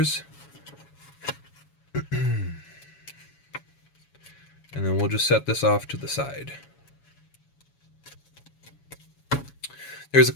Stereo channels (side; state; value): right; late; 7.1 ms